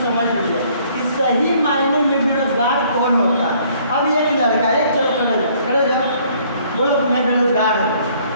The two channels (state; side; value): inverted; both; correlation -0.61